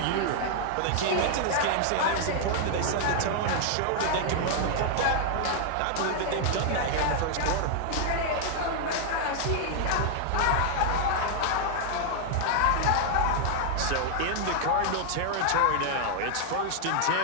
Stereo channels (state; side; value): different; both; correlation 0.00